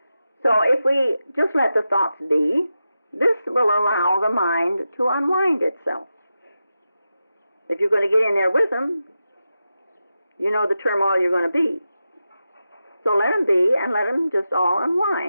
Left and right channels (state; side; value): inverted; both; correlation -0.90